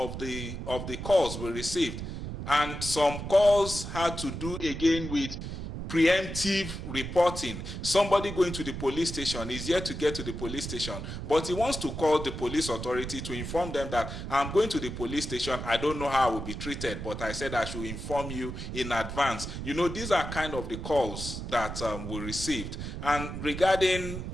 the calls we received. And some calls had to do again with preemptive reporting. Somebody going to the police station is yet to get to the police station, but he wants to call the police authority to inform them that I'm going to the police station, I don't know how I will be treated, but I said I should inform you in advance. You know, these are kind of the calls that we received. And regarding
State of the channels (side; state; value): right; noise; rumble, 7 dB below the sound